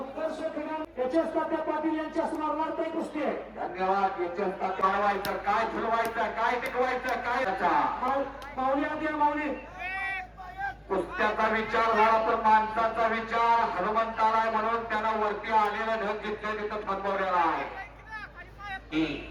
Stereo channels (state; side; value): identical; both; correlation 1.00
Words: क्रीडा एच.एस. तात्या पाटील यांच्या स्मरणार्थ ही कुस्ती आहे. धन्यवाद. याच्यात वाढवायचं काय फुलवायचं काय टिकवायचं काय माऊली आधी माऊली कुस्त्याचा विचार झाला तर माणसाचा विचार हनुमंताला आहे म्हणून त्यानं वरती आलेला ढग जिथल्या तिथं थांबवलेला आहे.